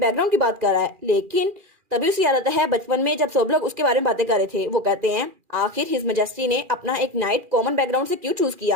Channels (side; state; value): left; late; 2.4 ms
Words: की बात कर रहा है, लेकिन तभी उसे याद आता है बचपन में जब सब लोग उसके बारे में बातें कर रहे थे। वो कहते हैं आखिर हिज मैजेस्टी ने अपना एक नाइट कॉमन बैकग्राउंड से क्यों चूज